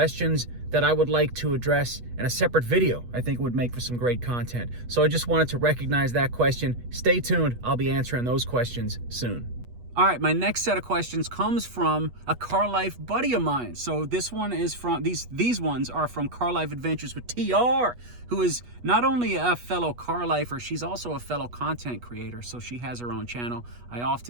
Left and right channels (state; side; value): late; left; 8.3 ms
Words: that I would like to address in a separate video. I think it would make for some great content. So I just wanted to recognize that question. Stay tuned. I'll be answering those questions soon. All right, my next set of questions comes from a Car Life buddy of mine. So this one is from, these ones are from Car Life Adventures with TR, who is not only a fellow car lifer, she's also a fellow content creator. So she has her own channel. I